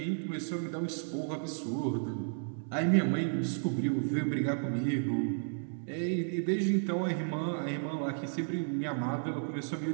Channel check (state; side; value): silent; left; digital silence